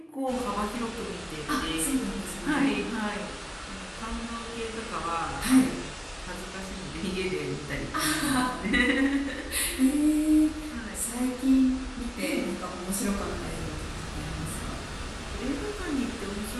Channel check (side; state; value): both; identical; correlation 1.00